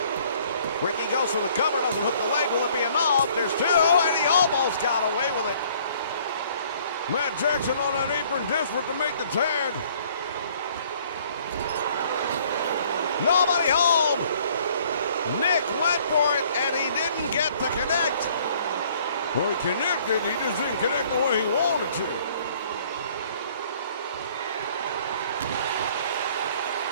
Ricky goes for the cover, doesn't hook the leg. Will it be enough? There's two, and he almost got away with it. Matt Jackson on that apron, desperate to make the tag. Nobody home. Nick went for it, and he didn't get to connect. Well, he connected, he just didn't connect the way he wanted to.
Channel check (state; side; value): inverted; both; correlation -0.58